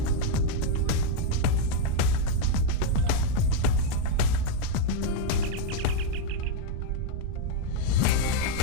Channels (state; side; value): different; both; correlation 0.01